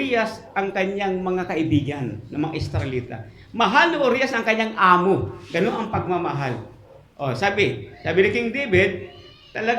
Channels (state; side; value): identical; both; correlation 1.00